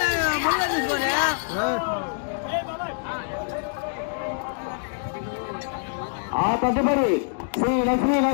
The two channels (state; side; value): silent; right; digital silence